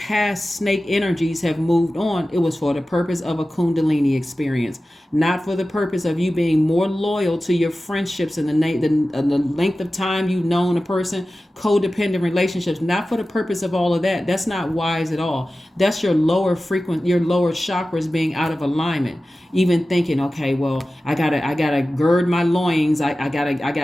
snake energies have moved on, it was for the purpose of a Kundalini experience, not for the purpose of you being more loyal to your friendships and the length of time you've known a person, codependent relationships, not for the purpose of all of that. That's not wise at all. That's your lower chakras being out of alignment. Even thinking, okay, well, I gotta gird my loins. I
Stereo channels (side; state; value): both; normal; correlation 0.95